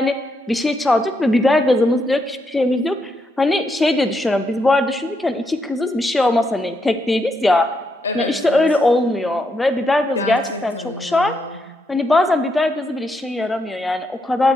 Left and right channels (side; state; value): both; normal; correlation 0.80